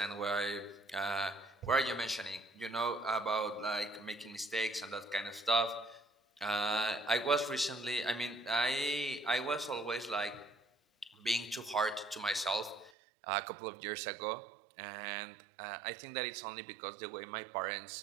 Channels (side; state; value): left; drops out; at 12.9 s